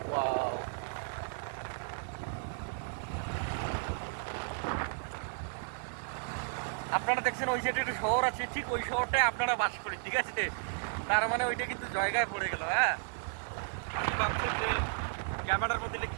ওয়াও, আপনারা দেখছেন ওই সাইডে একটা শহর আছে, ঠিক ওই শহরটায় আপনারা বাস করেন, ঠিক আছে। তার মানে ওইটা কিন্তু জায়গায় পড়ে গেল। হ্যাঁ, আপনি ভাবছেন যে ক্যামেরার মধ্যে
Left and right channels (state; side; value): silent; left; digital silence